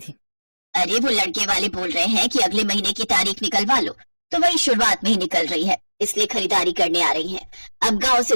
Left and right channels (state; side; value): inverted; both; correlation -1.00